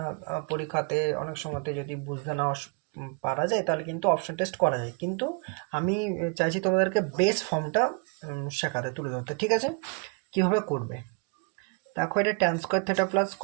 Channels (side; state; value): left; quieter; 33.4 dB